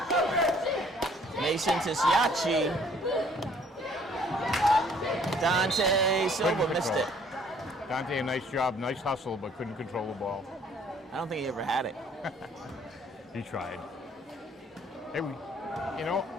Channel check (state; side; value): normal; both; correlation 0.59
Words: Mason to Siachi. Dante Silva Couldn't missed control. it. Dante, a nice job, nice hustle, but couldn't control the ball. I don't think he ever had it. He tried. Hey, you know,